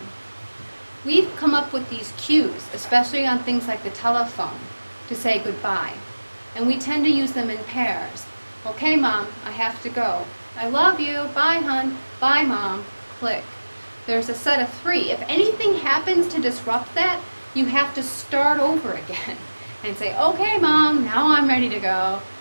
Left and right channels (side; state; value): both; inverted; correlation -1.00